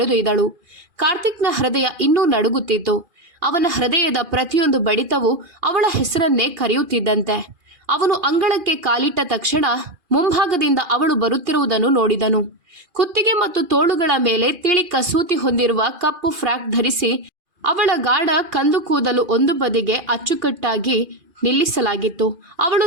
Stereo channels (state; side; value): late; left; 2.5 ms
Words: ಕಾರ್ತಿಕ್ನ ಹೃದಯ ಇನ್ನೂ ನಡುಗುತ್ತಿತ್ತು. ಅವನ ಹೃದಯದ ಪ್ರತಿಯೊಂದು ಬಡಿತವೂ ಅವಳ ಹೆಸರನ್ನೇ ಕರೆಯುತ್ತಿದ್ದಂತೆ. ಅವನು ಅಂಗಳಕ್ಕೆ ಕಾಲಿಟ್ಟ ತಕ್ಷಣ ಮುಂಭಾಗದಿಂದ ಅವಳು ಬರುತ್ತಿರುವುದನ್ನು ನೋಡಿದನು. ಕುತ್ತಿಗೆ ಮತ್ತು ತೋಳುಗಳ ಮೇಲೆ ತಿಳಿ ಕಸೂತಿ ಹೊಂದಿರುವ ಕಪ್ಪು ಫ್ರಾಕ್ ಧರಿಸಿ ಅವಳ ಗಾಢ ಕಂದು ಕೂದಲು ಒಂದು ಬದಿಗೆ ಅಚ್ಚುಕಟ್ಟಾಗಿ ನಿಲ್ಲಿಸಲಾಗಿತ್ತು. ಅವಳು